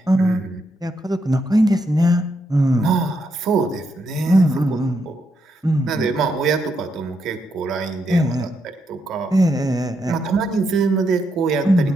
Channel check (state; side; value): normal; both; correlation 0.80